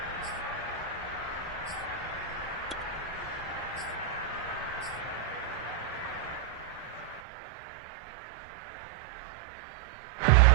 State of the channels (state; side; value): drops out; left; at 7.2 s